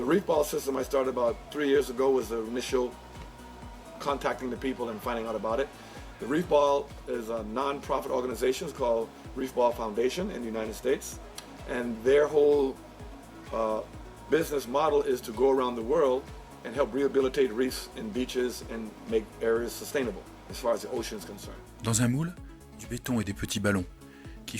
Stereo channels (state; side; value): identical; both; correlation 1.00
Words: reef ball system I started about 3 years ago was the initial contacting the people and finding out about it. The Reef Ball is a non-profit organization called Reef Ball Foundation in the United States, and their whole business model is to go around the world and help rehabilitate reefs and beaches and make areas sustainable as far as the ocean is concerned. Dans un moule, du béton et des petits ballons qui